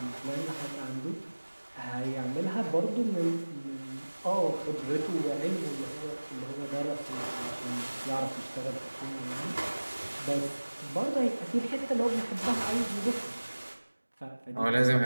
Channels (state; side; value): inverted; both; correlation -1.00